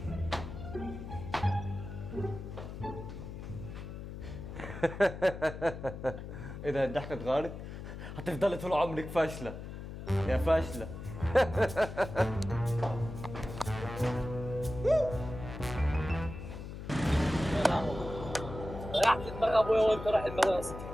اذا الضحكه اتغيرت هتفضلي طول عمرك فاشله يا فاشله. ريحت دماغ ابويا وانت رايح المدرسه.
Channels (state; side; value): noise; left; hum, 9 dB below the sound